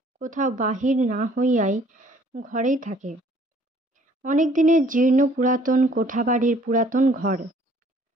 কোথাও বাহির না হইয়াই ঘরেই থাকে। অনেক দিনের জীর্ণ পুরাতন কোঠাবাড়ির পুরাতন ঘর।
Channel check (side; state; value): both; normal; correlation 0.58